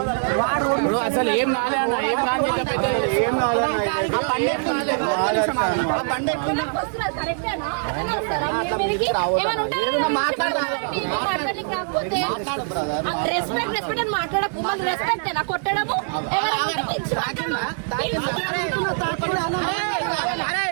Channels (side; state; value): left; silent; 61 dB below the other